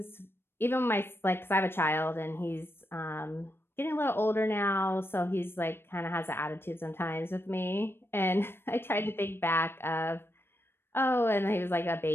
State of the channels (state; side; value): late; right; 0.11 ms